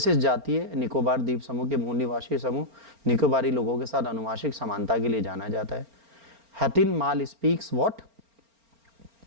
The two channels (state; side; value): late; left; 4.4 ms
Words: जातीय निकोबार द्वीप समूह के मूल निवासी समूह निकोबारी लोगों के साथ अनुवांशिक समानता के लिए जाना जाता है। हतिनमाल speaks what?